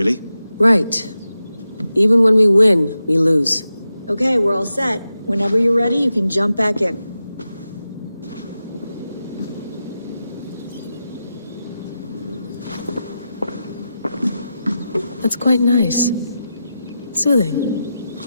Right. Even when we win, we lose. Okay, we're all set. Whenever you're ready, you can jump back in. That's quite nice. Soothing.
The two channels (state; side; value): inverted; both; correlation -0.90